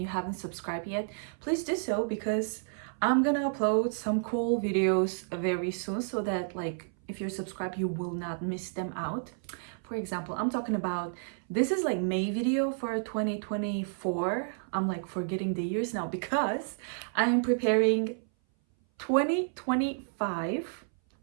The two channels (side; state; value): left; silent; 57 dB below the other